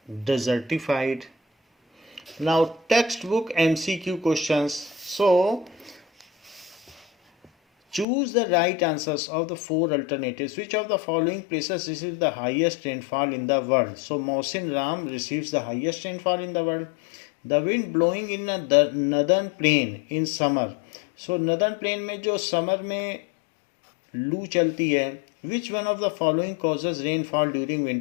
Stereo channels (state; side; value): drops out; right; at 8.1 s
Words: desertified. Now textbook MCQ questions. So choose the right answers of the four alternatives. Which of the following places receives the highest rainfall in the world? So Mohsin Ram receives the highest rainfall in the world. The wind blowing in the northern plain in summer. So northern plain में जो समर में लू चलती है, which one of the following causes rainfall during